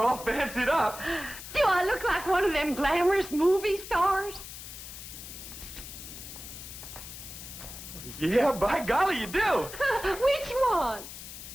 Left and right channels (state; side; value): noise; left; hiss, 12 dB below the sound